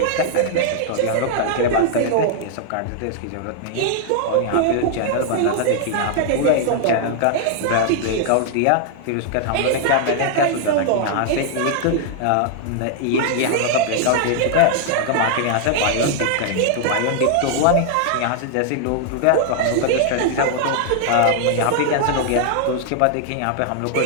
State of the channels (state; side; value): different; both; correlation -0.01